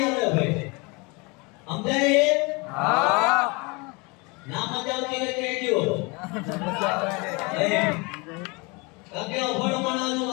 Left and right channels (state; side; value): quieter; right; 28.2 dB